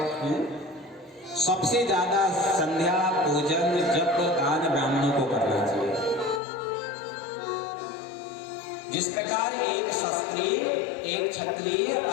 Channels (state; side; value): drops out; right; at 6.4 s